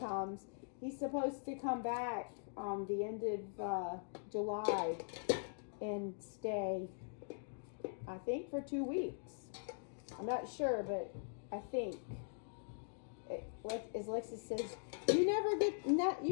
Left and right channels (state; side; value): silent; right; digital silence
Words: He's supposed to come back the end of July and stay, I think, for 2 weeks. I'm not sure, but I think. As Lexus says, you never get